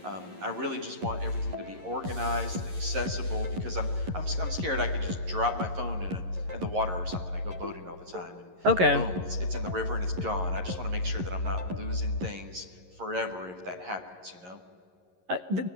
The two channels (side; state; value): left; late; 11 ms